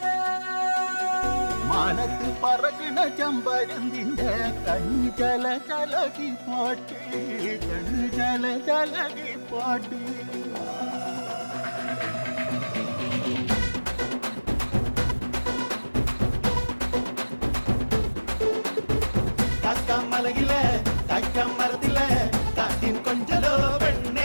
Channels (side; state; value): both; inverted; correlation -1.00